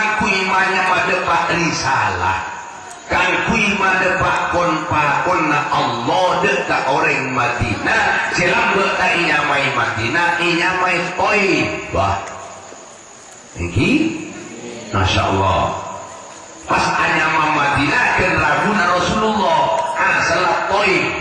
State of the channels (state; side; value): identical; both; correlation 1.00